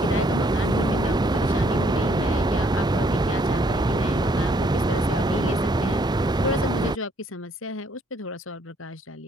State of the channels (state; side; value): normal; both; correlation 0.67